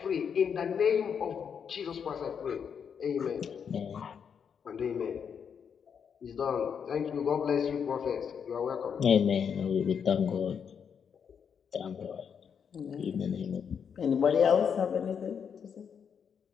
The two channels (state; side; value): quieter; right; 7.2 dB